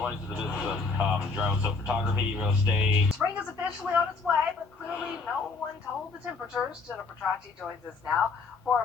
to the business of drone photography, real estate. Spring is officially on its way, but clearly no one told the temperatures. Jenna Petracci joins us now for a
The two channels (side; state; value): right; quieter; 4.3 dB